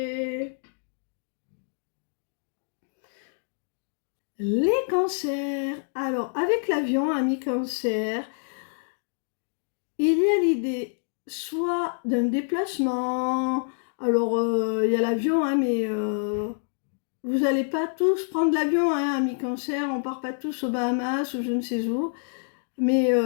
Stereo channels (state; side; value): silent; right; digital silence